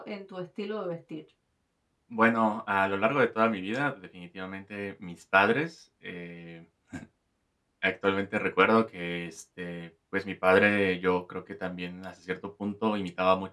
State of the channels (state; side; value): identical; both; correlation 1.00